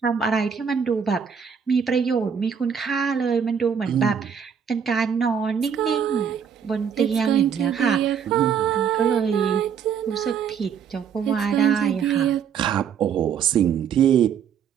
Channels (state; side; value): quieter; left; 7.4 dB